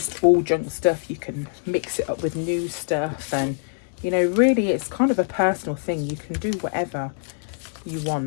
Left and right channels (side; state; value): right; silent; 63 dB below the other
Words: all junk stuff. You can mix it up with new stuff, and you know, really it's kind of a personal thing. You can do whatever you